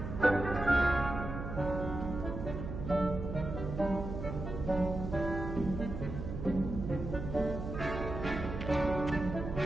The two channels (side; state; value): right; noise; hum, 6 dB below the sound